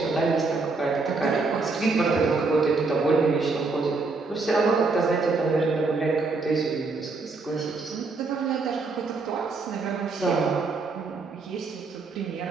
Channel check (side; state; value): left; quieter; 3.9 dB